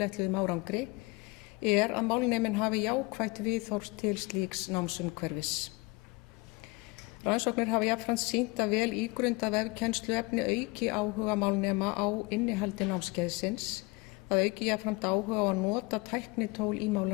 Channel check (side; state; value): right; quieter; 24.9 dB